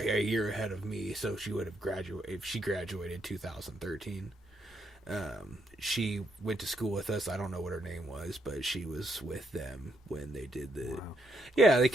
year ahead of me, so she would have graduated. If she graduated 2013, she went to school with us. I don't know what her name was, but she was with them when they did the. Wow. Yeah, they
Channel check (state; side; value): normal; both; correlation 0.76